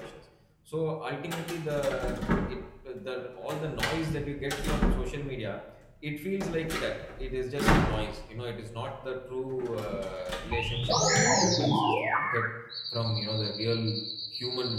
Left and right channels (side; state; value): both; identical; correlation 1.00